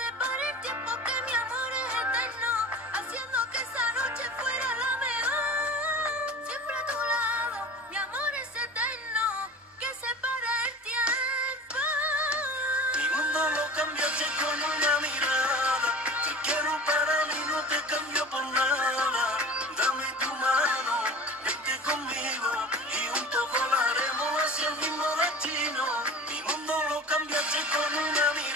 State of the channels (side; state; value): both; normal; correlation 0.38